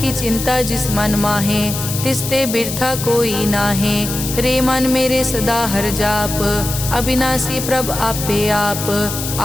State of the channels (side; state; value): left; noise; hiss, 6 dB below the sound